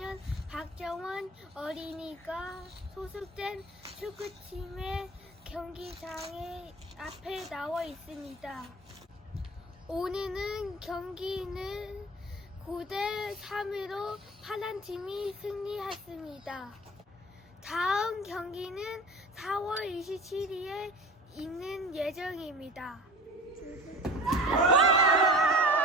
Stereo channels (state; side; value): normal; both; correlation 0.39